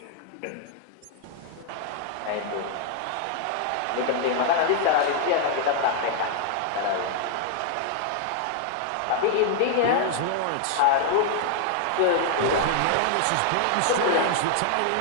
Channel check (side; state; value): both; different; correlation 0.00